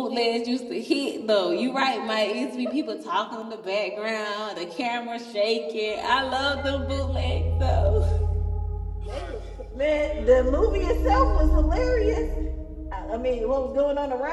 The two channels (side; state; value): both; identical; correlation 1.00